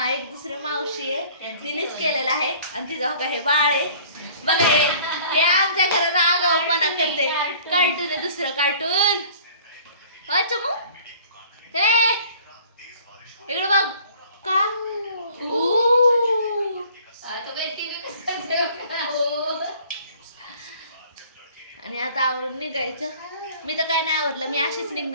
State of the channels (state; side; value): inverted; both; correlation -0.51